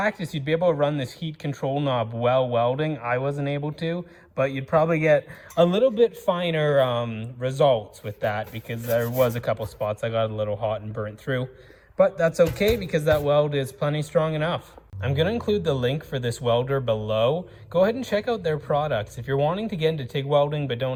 you'd be able to run this heat control knob while welding. I wasn't able to, but you'd probably get a little bit finer results with that, because there was a couple spots I got a little hot and burnt through. But that's okay, because that weld is plenty strong enough. I'm going to include the link for this welder below. Go ahead and check out their products. If you're wanting to get into TIG welding but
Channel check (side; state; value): both; identical; correlation 1.00